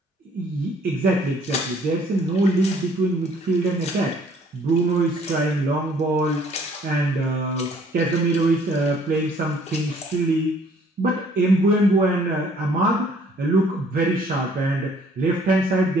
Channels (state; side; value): normal; both; correlation 0.60